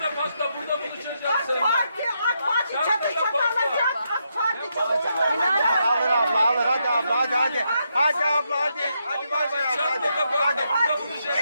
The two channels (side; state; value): both; inverted; correlation -0.80